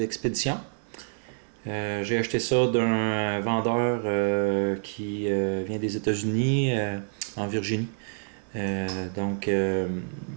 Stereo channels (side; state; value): left; silent; digital silence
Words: J'ai acheté ça d'un vendeur qui vient des États-Unis, en Virginie. Donc, je